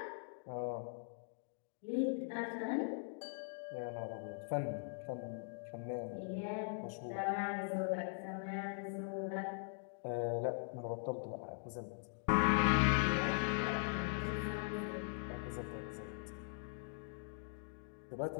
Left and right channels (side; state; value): right; silent; digital silence